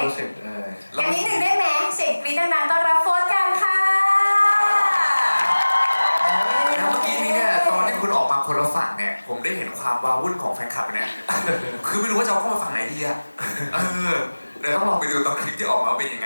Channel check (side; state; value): both; inverted; correlation -1.00